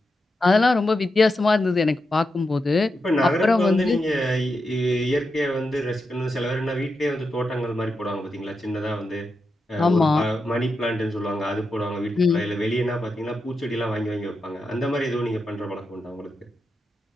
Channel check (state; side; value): normal; both; correlation 0.87